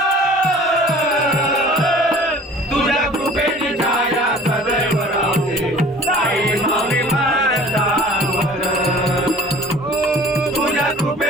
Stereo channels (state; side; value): normal; both; correlation 0.48